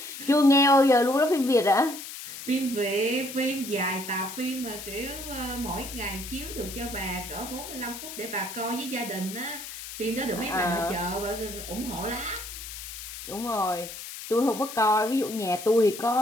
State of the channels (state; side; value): noise; left; hiss, 10 dB below the sound